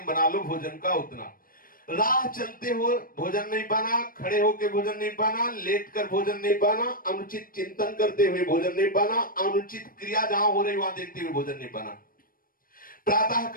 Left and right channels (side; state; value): right; late; 0.41 ms